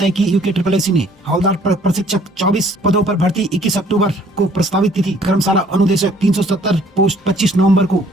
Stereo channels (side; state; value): both; normal; correlation 0.59